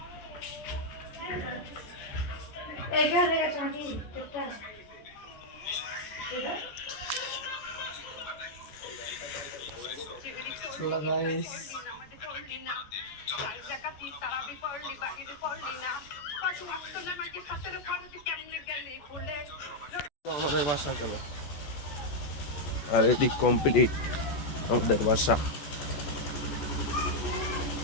Hello guys, আমাদের বাসা চলো। আর এদিক কমপ্লিট আমাদের বাসা।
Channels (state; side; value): late; right; 14 ms